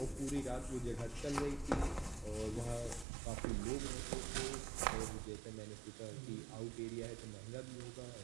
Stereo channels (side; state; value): left; drops out; at 3.1 s